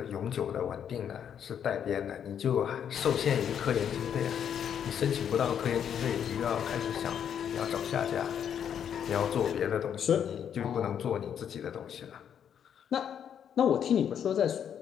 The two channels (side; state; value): right; quieter; 8.6 dB